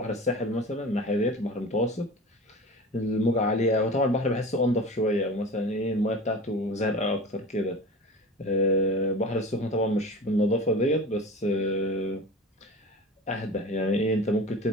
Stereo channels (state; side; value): normal; both; correlation 0.35